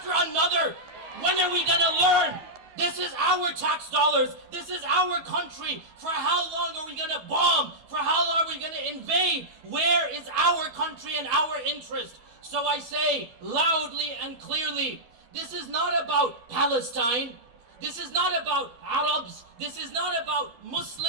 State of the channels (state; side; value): late; left; 12 ms